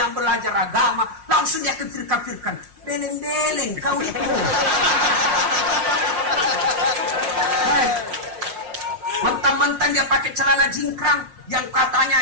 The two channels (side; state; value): left; late; 5.6 ms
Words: belajar agama, langsung dia kafir-kafirkan. Beleng-beleng kau itu. Mentang-mentang dia pakai celana jingkrang yang